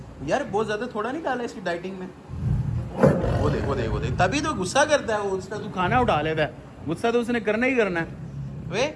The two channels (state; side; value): identical; both; correlation 1.00